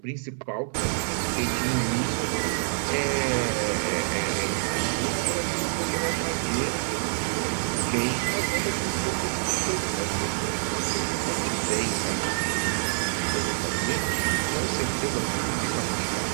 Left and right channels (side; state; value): left; silent; digital silence